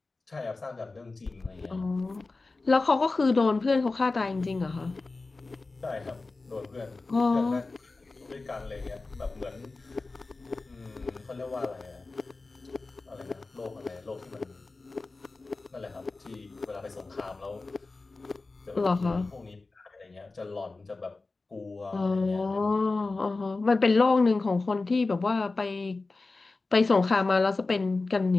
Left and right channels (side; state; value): right; quieter; 3.6 dB